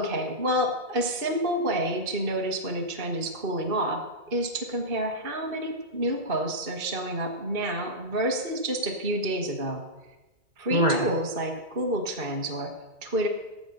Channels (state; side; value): late; left; 2.5 ms